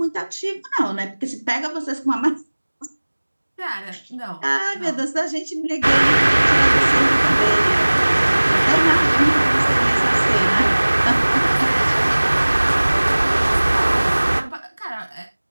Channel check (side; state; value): both; inverted; correlation -1.00